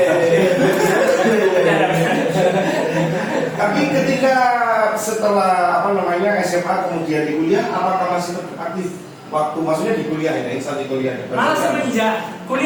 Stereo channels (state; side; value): identical; both; correlation 1.00